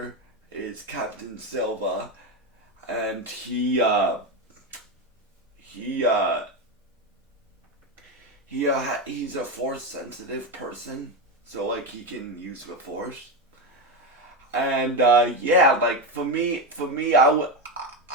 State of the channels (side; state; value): both; normal; correlation 0.13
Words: is Captain Silva, and he's a force sensitive person, so like he can use the force. And yeah, like for me, I